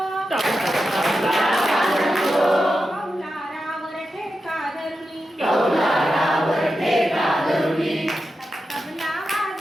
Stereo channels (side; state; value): both; normal; correlation 0.90